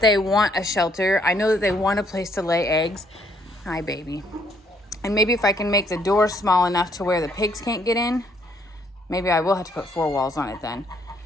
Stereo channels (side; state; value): both; normal; correlation 0.68